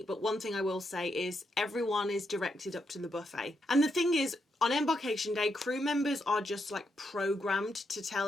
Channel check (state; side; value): normal; both; correlation 0.81